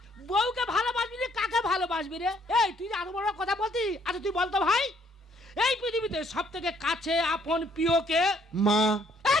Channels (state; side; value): normal; both; correlation 0.66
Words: বউকে ভালোবাসবি রে, কাকে ভালোবাসবি রে? এই তুই যে এত বড় কথা বলতি, আচ্ছা তুই বলতো ভাই এই পৃথিবীতে সব থেকে কাছে আপন প্রিয়কে? মা। এই